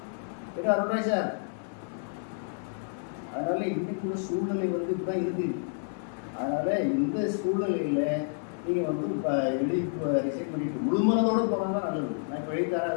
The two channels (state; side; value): silent; right; digital silence